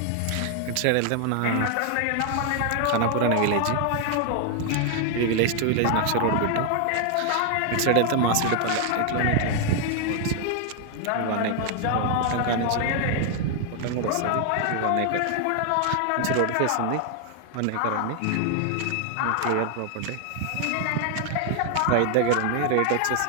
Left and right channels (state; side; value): different; both; correlation 0.00